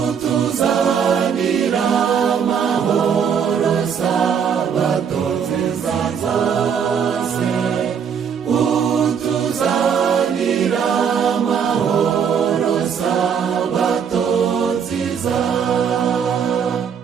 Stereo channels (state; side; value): quieter; left; 7.3 dB